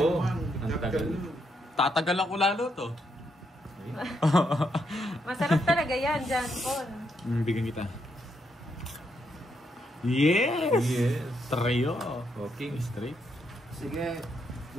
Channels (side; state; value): both; normal; correlation 0.78